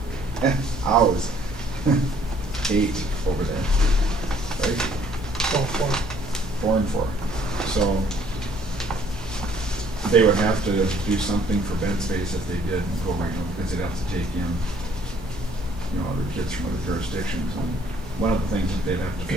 8 hours. 8 over there, right? 4 and 4. So they would have to do something for bed space if they did go regional, because they'd have to take in, other kids from other jurisdictions. And one of the things that they'd have to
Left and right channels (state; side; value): normal; both; correlation 0.61